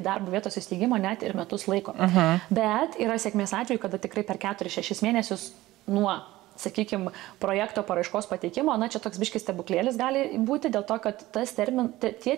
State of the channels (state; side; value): quieter; left; 17.2 dB